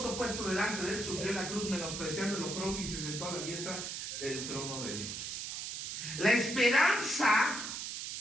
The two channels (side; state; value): right; noise; hiss, 5 dB below the sound